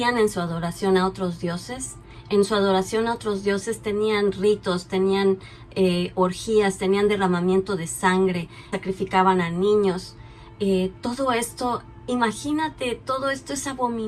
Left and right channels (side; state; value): both; identical; correlation 1.00